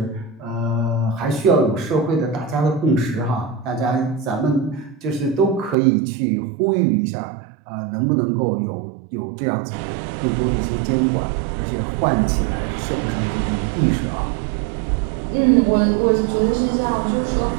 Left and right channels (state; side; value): drops out; left; at 5.8 s